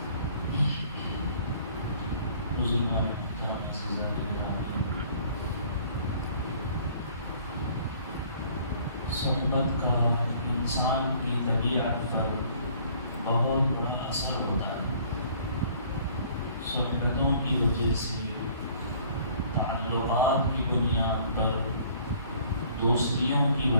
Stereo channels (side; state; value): both; inverted; correlation -0.56